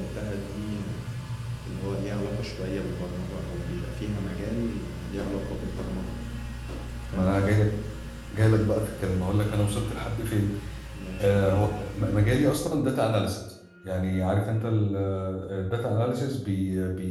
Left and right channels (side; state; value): both; identical; correlation 1.00